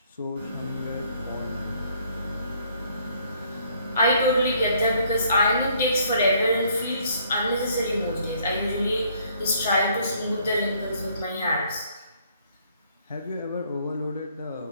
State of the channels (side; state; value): both; inverted; correlation -0.64